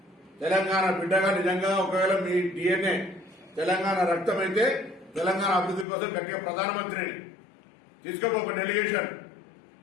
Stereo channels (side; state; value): right; drops out; at 5.9 s